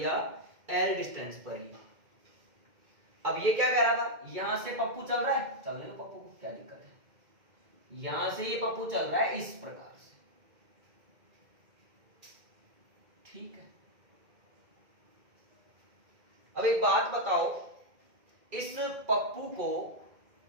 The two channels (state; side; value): late; left; 2.1 ms